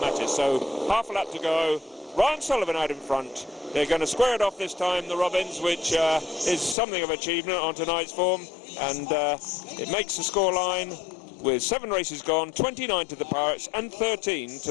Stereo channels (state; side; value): drops out; right; at 6.8 s